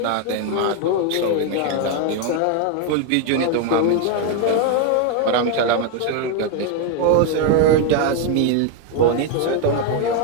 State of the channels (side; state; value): both; different; correlation 0.01